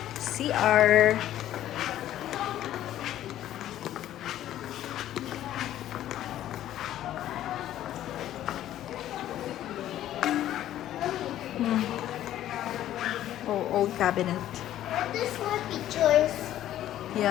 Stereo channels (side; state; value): right; quieter; 12.6 dB